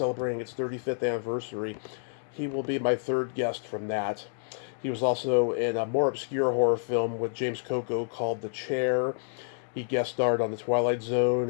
its 35th anniversary. He will be my third guest from that. He was also in a more obscure horror film with James Coco called The Chair. He guest starred on The Twilight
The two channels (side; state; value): right; silent; digital silence